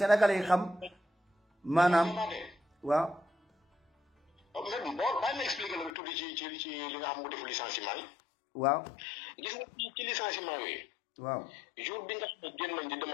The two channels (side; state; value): right; drops out; at 5.9 s